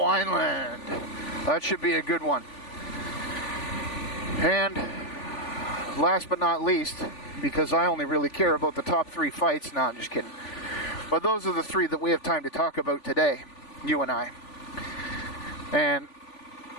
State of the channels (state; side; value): late; right; 3.5 ms